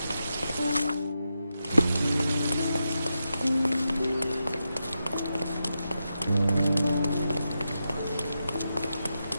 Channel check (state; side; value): inverted; both; correlation -0.88